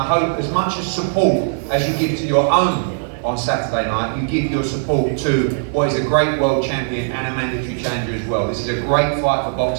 hope as much as support as you give to your own on Saturday night, you give your support to what is a great world champion and a mandatory challenger as well. This is a great fight for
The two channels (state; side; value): silent; left; 67 dB below the other